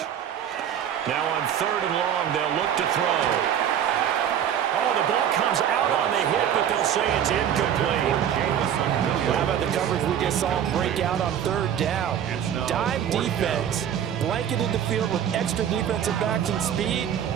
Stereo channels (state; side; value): quieter; left; 9.5 dB